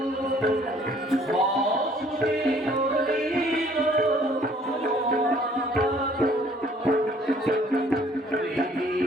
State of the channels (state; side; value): normal; both; correlation 0.58